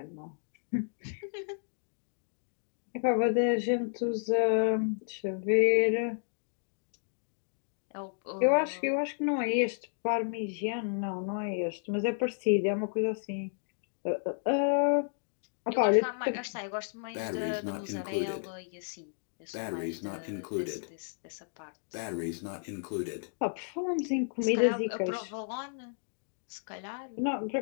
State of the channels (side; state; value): right; silent; digital silence